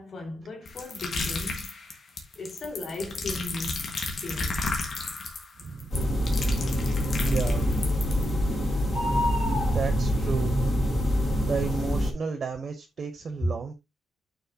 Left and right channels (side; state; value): both; normal; correlation 0.84